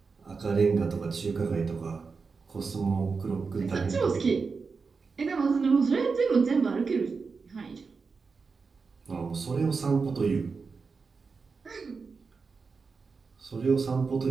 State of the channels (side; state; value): left; quieter; 4.8 dB